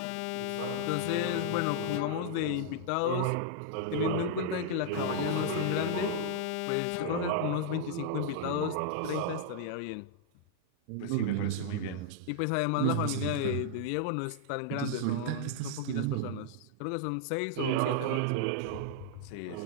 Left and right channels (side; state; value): both; different; correlation -0.01